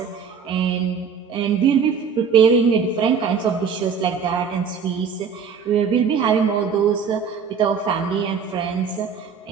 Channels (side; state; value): left; quieter; 6.4 dB